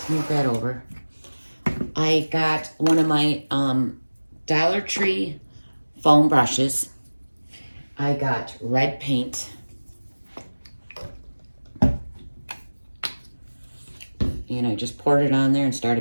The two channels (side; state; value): both; inverted; correlation -1.00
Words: move that over. I got one of my Dollar Tree foam brushes. I got red paint. And I just poured it on there and